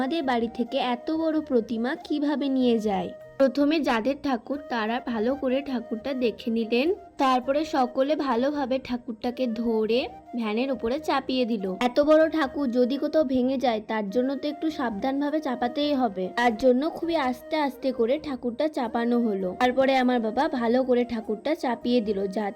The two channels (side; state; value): both; identical; correlation 1.00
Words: বাড়ি থেকে এত বড় প্রতিমা কিভাবে নিয়ে যায়। প্রথমে যাদের ঠাকুর তারা ভালো করে ঠাকুরটা দেখে নিলেন, তারপরে সকলে ভালোভাবে ঠাকুরটাকে ধরে ভ্যানের উপরে চাপিয়ে দিল। এত বড় ঠাকুর যদি কোথাও ভেঙে যায় তার জন্য তো একটু সাবধানভাবে চাপাতেই হবে, তার জন্য খুবই আস্তে আস্তে করে ঠাকুরটা চাপানো হলো। তারপরে আমার বাবা ভালো করে ঠাকুরটা চাপিয়ে দিল,